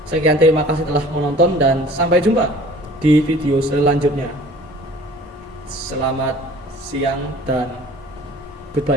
Sekian, terima kasih telah menonton dan sampai jumpa di video selanjutnya. Selamat siang dan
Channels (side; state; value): both; normal; correlation 0.48